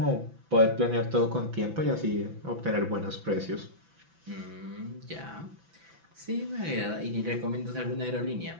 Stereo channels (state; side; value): late; left; 6.0 ms